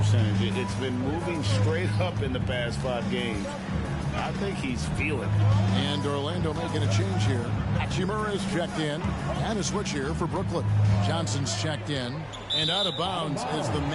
it's been moving straight up in the past 5 games. I think he's feeling it. And Orlando making a change here. Hachimura is checked in. And a switch here for Brooklyn. Johnson's checked in. And out of bounds as the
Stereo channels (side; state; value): both; identical; correlation 1.00